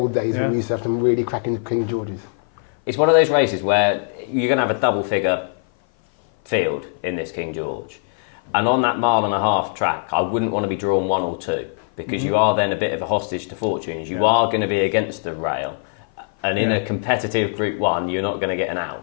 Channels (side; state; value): right; silent; 56 dB below the other